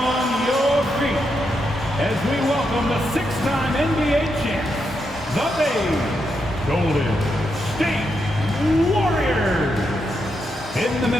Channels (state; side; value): normal; both; correlation 0.83